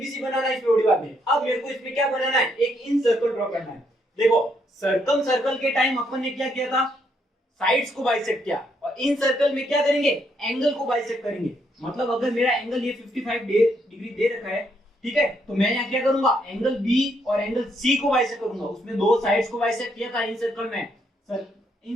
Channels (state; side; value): normal; both; correlation 0.74